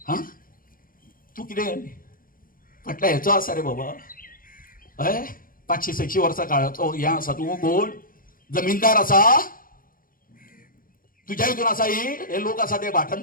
हा, तू कितें फाटल्या हेचो आसा रे बाबा? हय, 500-600 वर्सां काळाचो हे आसा. तू कोण जमीनदार आसा? तुझ्या हितून आसा हे लोक आसा ते भाटान,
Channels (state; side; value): late; right; 0.41 ms